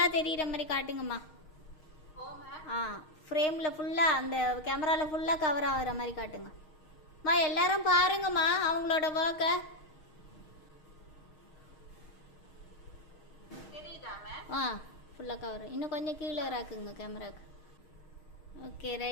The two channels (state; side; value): late; right; 6.4 ms